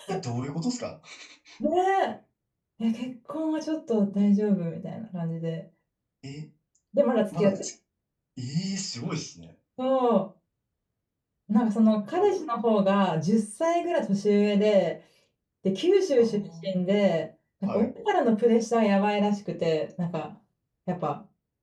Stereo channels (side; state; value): both; identical; correlation 1.00